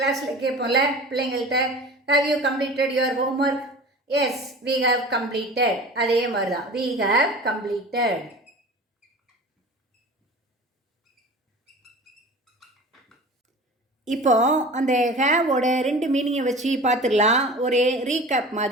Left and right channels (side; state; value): both; normal; correlation 0.38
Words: கேட்போம்ல பிள்ளைங்கள்ட்ட, have you completed your homework? Yes, we have completed. அதே மாதிரி தான், we have completed. இப்போ அந்த ஹேவோட 2 மீனிங்கை வச்சு பார்த்துடலாம். ஒரு ரீகேப்